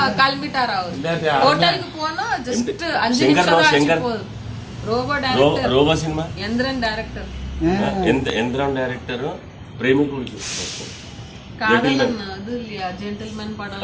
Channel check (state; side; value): identical; both; correlation 1.00